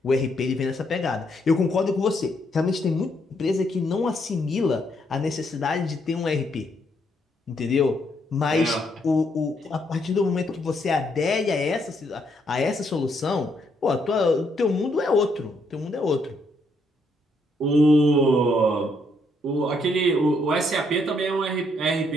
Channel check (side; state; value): both; normal; correlation 0.74